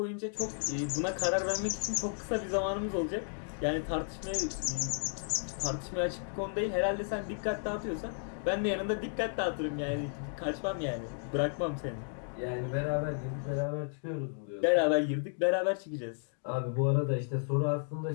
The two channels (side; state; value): right; silent; digital silence